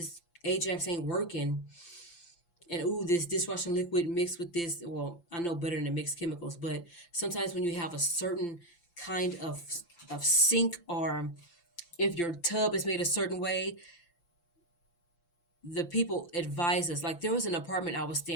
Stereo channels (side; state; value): right; late; 5.9 ms